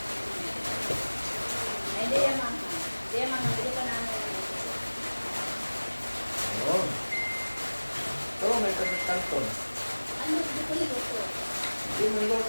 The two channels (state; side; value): inverted; both; correlation -1.00